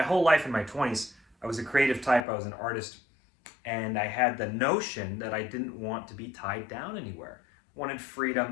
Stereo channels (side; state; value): right; drops out; at 2.2 s